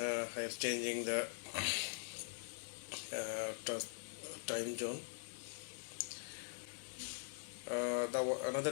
am changing the time zone. Another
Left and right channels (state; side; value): silent; right; digital silence